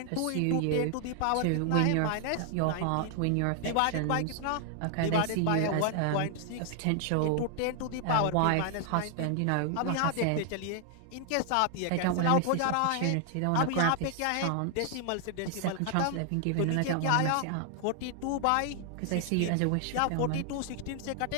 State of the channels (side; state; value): both; different; correlation 0.00